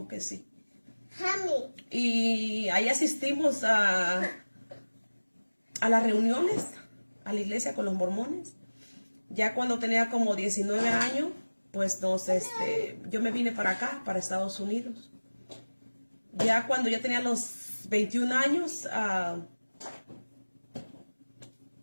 que sí, y ahí asistimos a las reuniones, a la iglesia con los mormones. Ya cuando tenía como 19 años, pues yo me vine para acá, para Estados Unidos. Ya cuando ya tenía los 21 años,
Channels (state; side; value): inverted; both; correlation -1.00